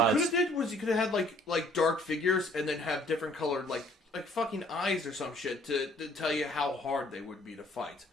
you could have did was you could have had like dark figures and then have different colored like fucking eyes or some shit to tell you how hard they would be to fight.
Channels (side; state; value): both; normal; correlation 0.59